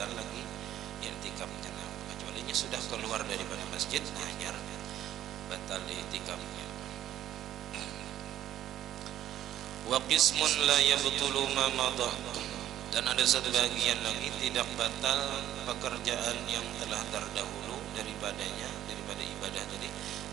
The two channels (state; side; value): quieter; left; 12.0 dB